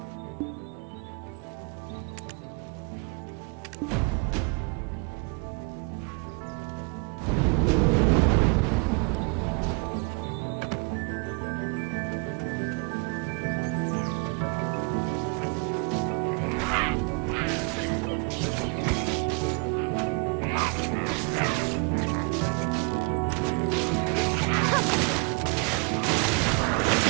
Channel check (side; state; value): left; quieter; 32.9 dB